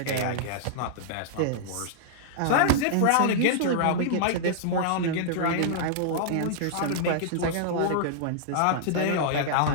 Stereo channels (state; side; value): different; both; correlation -0.01